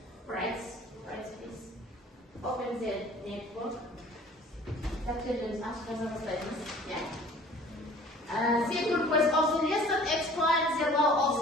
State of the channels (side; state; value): both; normal; correlation 0.49